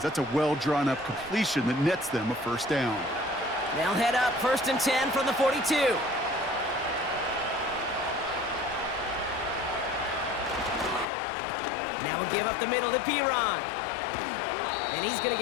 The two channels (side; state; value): right; drops out; at 11.1 s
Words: That's a well-drawn-up completion that nets them a first down. They'll head up 1st and 10 from the 42. Now we'll give up the middle to Piron. And he's going to